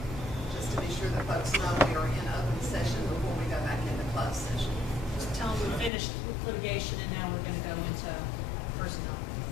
to be sure that folks know we are in open session before we go back into closed session. Just tell them we finished litigation and now we're going to go into personnel.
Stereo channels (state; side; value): drops out; right; at 5.9 s